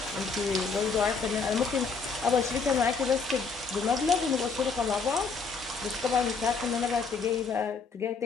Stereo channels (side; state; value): right; quieter; 4.9 dB